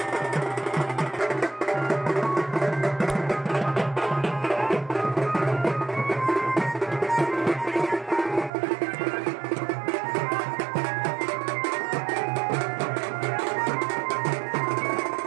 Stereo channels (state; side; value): drops out; left; at 8.5 s